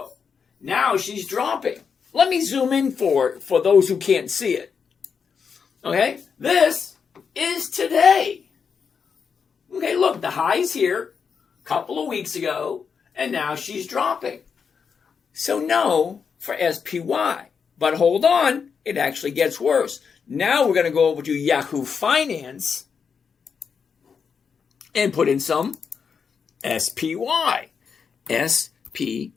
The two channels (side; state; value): right; quieter; 6.2 dB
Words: Now she's dropping. Let me zoom in for those who can't see it. Okay? This is today. Okay, look, the high's here a couple of weeks ago, and now she's dropping. So no for SPY. But hold on, it actually gets worse. Now we're going to go over to Yahoo Finance and put in some SPY.